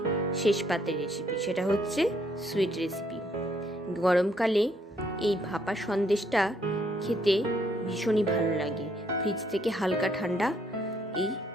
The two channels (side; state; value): both; normal; correlation 0.70